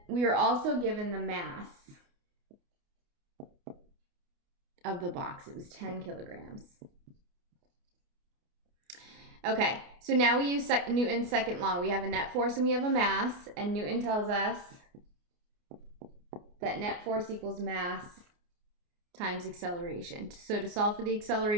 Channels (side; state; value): left; late; 29 ms